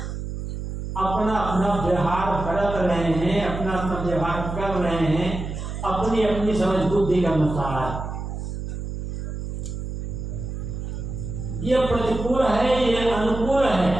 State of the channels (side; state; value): right; noise; hum, 6 dB below the sound